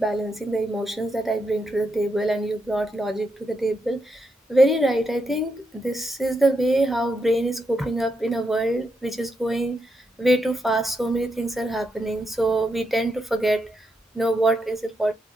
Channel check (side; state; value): both; normal; correlation 0.82